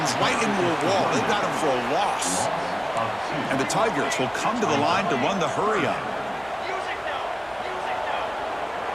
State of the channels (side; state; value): both; identical; correlation 1.00